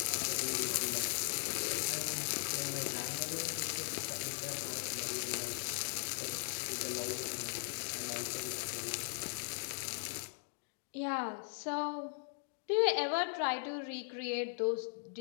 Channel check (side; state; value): right; silent; digital silence